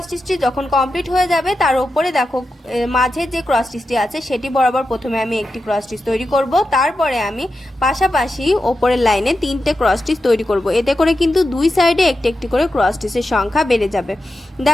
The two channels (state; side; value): normal; both; correlation 0.90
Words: স্টিচটি যখন কমপ্লিট হয়ে যাবে তার উপরে দেখো মাঝের যে ক্রস স্টিচটি আছে সেটি বরাবর প্রথমে আমি একটি ক্রস স্টিচ তৈরি করব, তারপরে আমি পাশাপাশি ওপরের লাইনে 3টে ক্রস স্টিচ তৈরি করব। এতে করে কিন্তু দুই সাইডে একটি একটি করে ক্রস স্টিচের সংখ্যা বেড়ে যাবে।